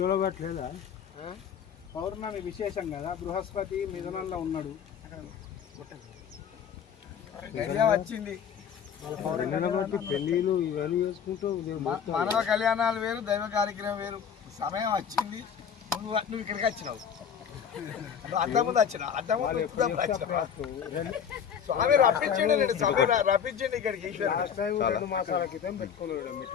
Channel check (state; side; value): quieter; right; 7.7 dB